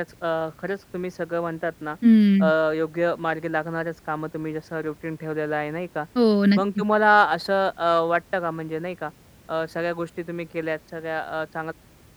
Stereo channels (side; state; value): both; identical; correlation 1.00